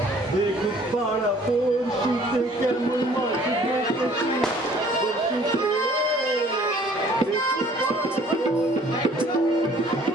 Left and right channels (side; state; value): both; normal; correlation 0.55